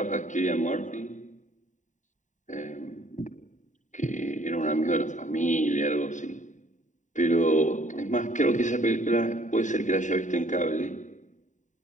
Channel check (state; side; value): late; right; 0.36 ms